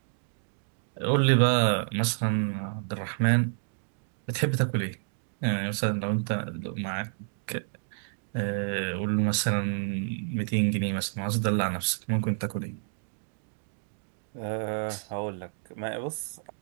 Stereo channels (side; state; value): left; silent; digital silence